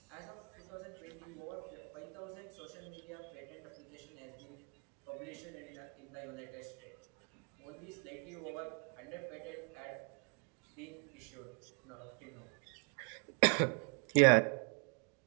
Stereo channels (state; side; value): quieter; left; 37.8 dB